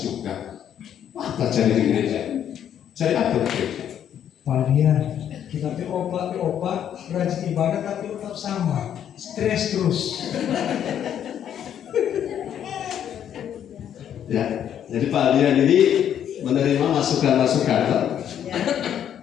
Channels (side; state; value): right; quieter; 9.7 dB